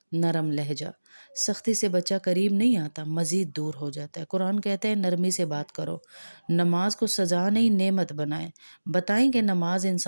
نرم لہجہ، سختی سے بچہ قریب نہیں آتا، مزید دور ہو جاتا ہے۔ قرآن کہتا ہے نرمی سے بات کرو، نماز کو سزا نہیں نعمت بنائیں، بتائیں کہ نماز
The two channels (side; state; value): both; inverted; correlation -1.00